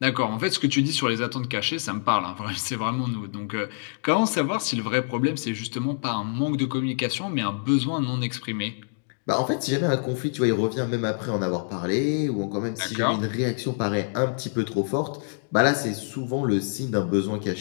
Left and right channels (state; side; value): silent; right; digital silence